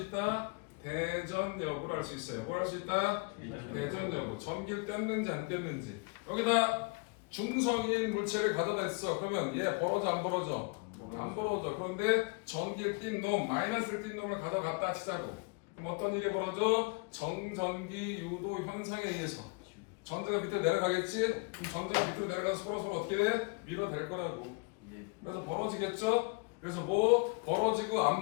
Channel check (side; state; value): right; quieter; 31.4 dB